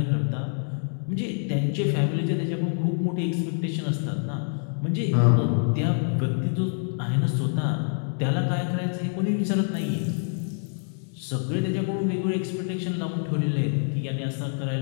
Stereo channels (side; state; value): right; silent; 61 dB below the other